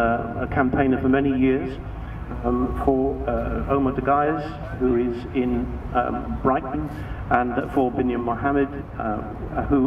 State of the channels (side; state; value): both; identical; correlation 1.00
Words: campaigner for many years for Omar Dagayas, who is in Brighton, and for Binyam Mohammed,